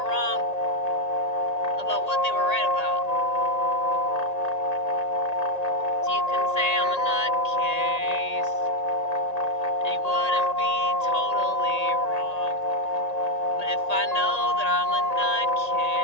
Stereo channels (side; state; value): right; late; 1.8 ms